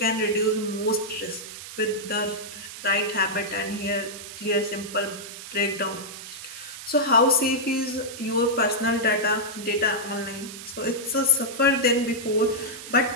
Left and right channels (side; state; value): right; noise; hiss, 12 dB below the sound